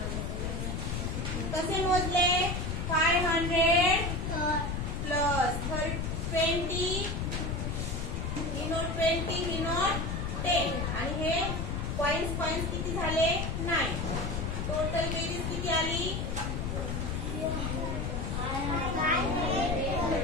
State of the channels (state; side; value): noise; left; rumble, 2 dB below the sound